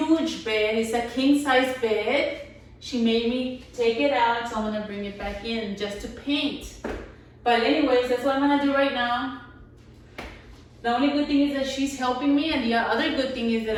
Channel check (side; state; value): both; identical; correlation 1.00